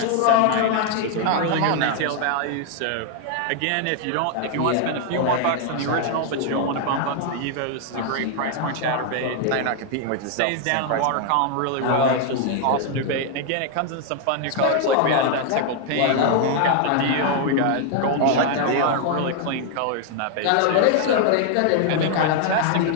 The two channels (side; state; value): both; different; correlation 0.00